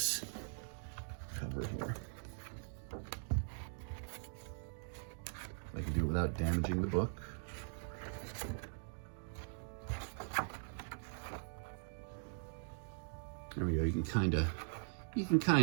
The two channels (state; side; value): silent; left; digital silence